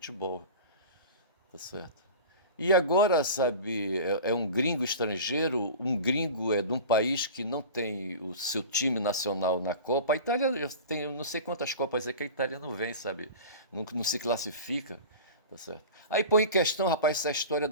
tá certo? E agora, sabe, é um gringo estrangeiro, um gringo de um país que não tem o seu time nacional na Copa. A Itália tem, eu não sei quantas Copas é que a Itália não vem, sabe? Não se classifica, tá certo? Aí põe em questão, rapaz, essa história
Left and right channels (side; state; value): both; inverted; correlation -0.35